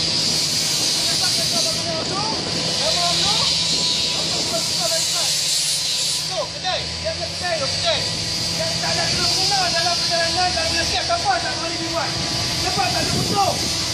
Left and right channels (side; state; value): both; identical; correlation 1.00